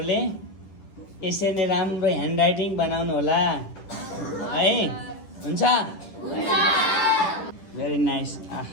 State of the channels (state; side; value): late; right; 10 ms